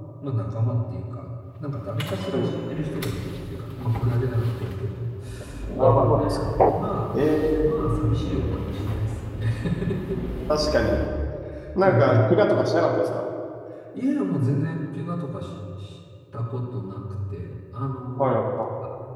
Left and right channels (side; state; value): both; identical; correlation 1.00